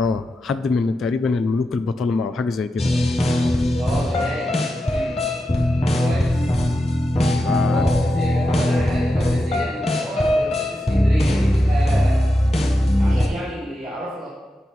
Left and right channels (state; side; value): normal; both; correlation 0.89